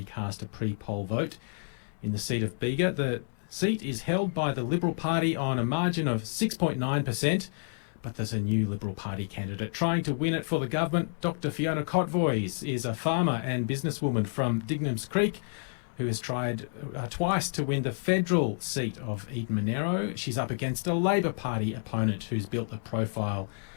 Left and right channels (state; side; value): silent; right; digital silence